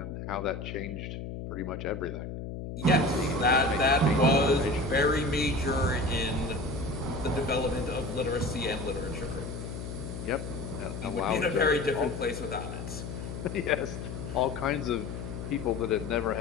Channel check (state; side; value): noise; left; hum, 7 dB below the sound